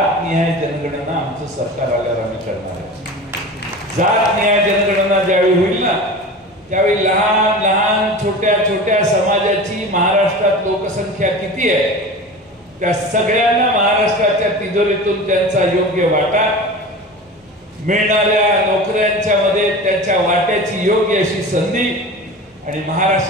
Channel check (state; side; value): normal; both; correlation 0.33